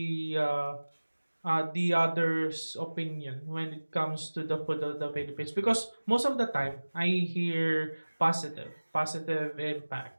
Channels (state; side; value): inverted; both; correlation -1.00